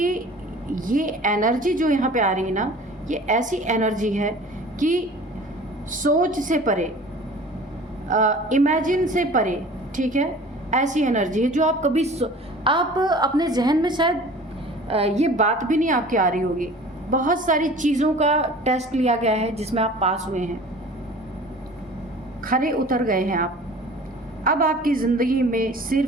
ये एनर्जी जो यहाँ पे आ रही है ना, ये ऐसी एनर्जी है कि सोच से परे, इमेजिन से परे, ठीक है, ऐसी एनर्जी है जो आप कभी आप अपने जहन में शायद ये बात भी नहीं आपकी आ रही होगी। बहुत सारी चीज़ों का टेस्ट लिया गया है जिसमें आप पास हुए हैं, खरे उतर गए हैं आप। अब आपकी ज़िंदगी में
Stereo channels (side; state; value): both; normal; correlation 0.44